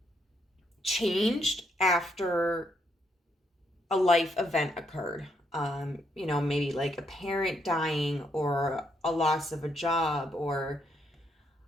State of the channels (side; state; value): both; normal; correlation 0.75